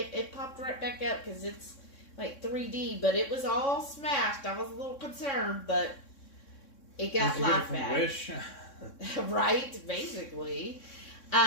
popped right back up because it's like 3D. But it was all smashed. I was a little concerned, but it got laughed at. Wish. Right, basically.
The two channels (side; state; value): right; late; 3.6 ms